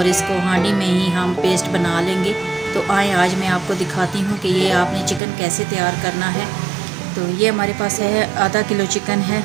इसको हांडी में ही हम पेस्ट बना लेंगे। तो आए आज मैं आपको दिखाती हूँ कि ये आपने चिकन कैसे तैयार करना है। तो ये हमारे पास है आधा किलो चिकन है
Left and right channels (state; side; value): drops out; left; at 5.2 s